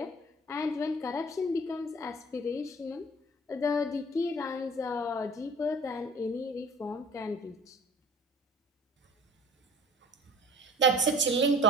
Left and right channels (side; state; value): both; normal; correlation 0.46